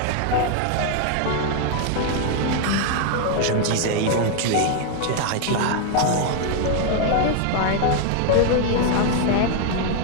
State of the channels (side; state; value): both; different; correlation 0.00